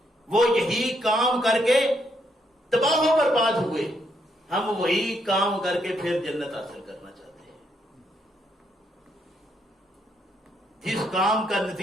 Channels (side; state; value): both; normal; correlation 0.76